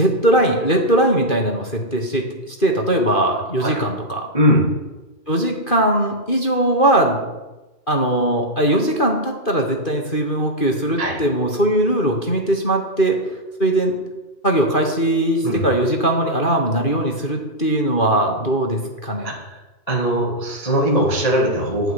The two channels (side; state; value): right; late; 2.5 ms